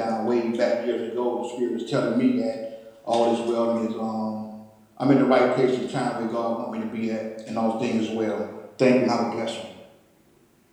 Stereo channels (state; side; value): identical; both; correlation 1.00